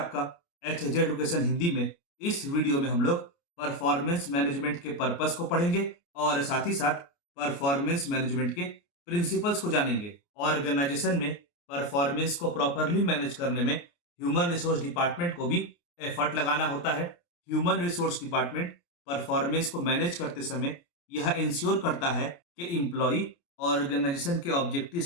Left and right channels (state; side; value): late; right; 29 ms